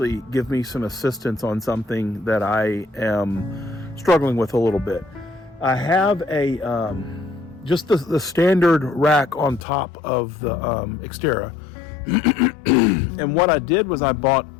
give me some assistance on something that I am struggling with a little bit. I have a just the standard rack on top of the xTerra. And what I did was I bought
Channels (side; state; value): right; drops out; at 9.7 s